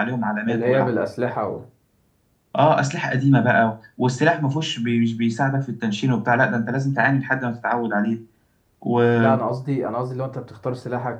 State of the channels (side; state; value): both; identical; correlation 1.00